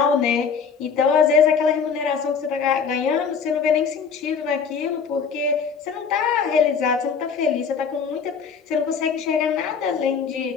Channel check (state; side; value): quieter; right; 6.1 dB